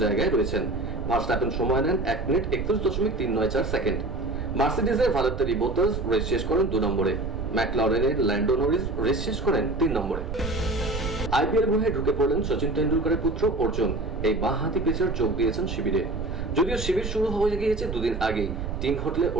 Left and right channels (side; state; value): right; noise; rumble, 5 dB below the sound